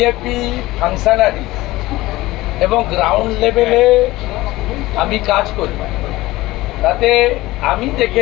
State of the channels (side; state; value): right; quieter; 18.4 dB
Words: ফাংশনারি এবং গ্রাউন্ড লেভেলে আমি কাজ করি, তাতে আমি